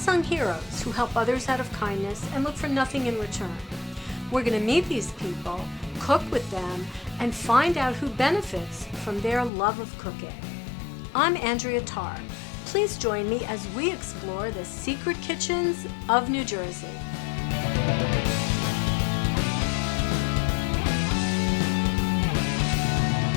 heroes who help others out of kindness and look for nothing in return. We're going to meet these people, cook with them, and find out who benefits from their love of cooking. I'm Andrea Tarr. Please join me as we explore the secret kitchens of New Jersey.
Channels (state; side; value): drops out; right; at 9.5 s